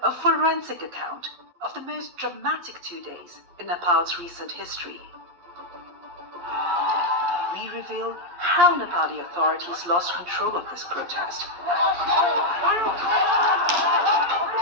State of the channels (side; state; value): left; late; 11 ms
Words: a forensic account of the most dramatic 2 days in Nepal's recent history. We reveal how Nepali authorities lost control of this protest,